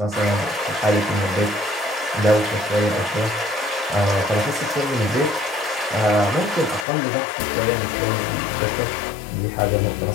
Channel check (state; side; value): drops out; right; at 6.9 s